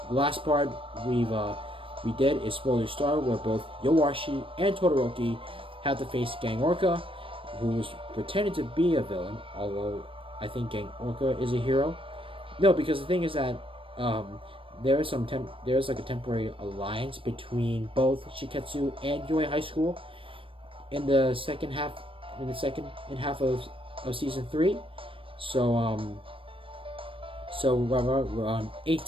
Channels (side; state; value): left; late; 0.25 ms